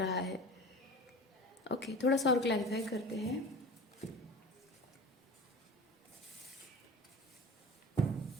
है। ओके, थोड़ा सा और क्लैरिफाई करते हैं।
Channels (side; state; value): both; normal; correlation 0.36